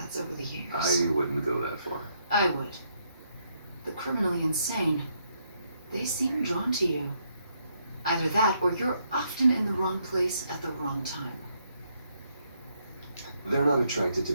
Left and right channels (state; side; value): inverted; both; correlation -0.75